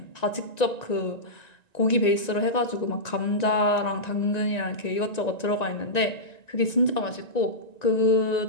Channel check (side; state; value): right; late; 1.9 ms